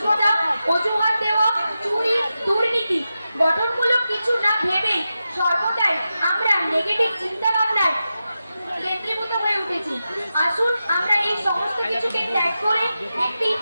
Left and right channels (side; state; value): both; inverted; correlation -0.91